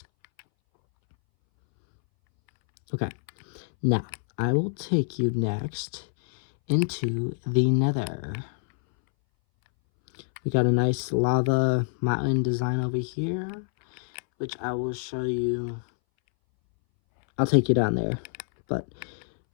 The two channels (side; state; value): right; silent; 61 dB below the other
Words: Okay. Now, I will take you next into the nether. We got a nice lava mountain design over here, which I will show you. I'll take you down there, but